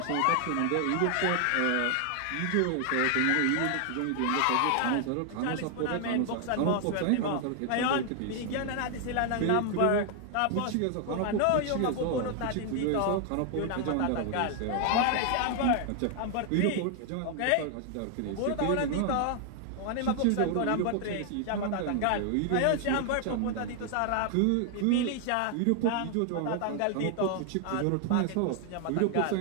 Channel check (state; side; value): different; both; correlation 0.00